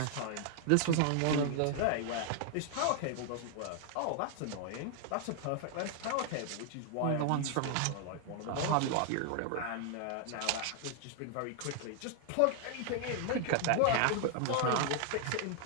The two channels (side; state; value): both; different; correlation 0.00